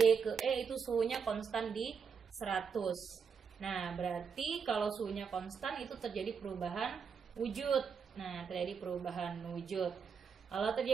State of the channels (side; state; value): left; quieter; 6.2 dB